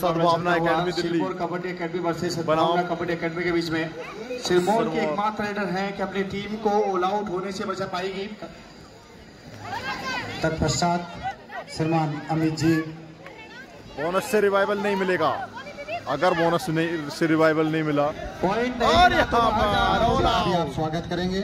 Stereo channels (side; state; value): both; identical; correlation 1.00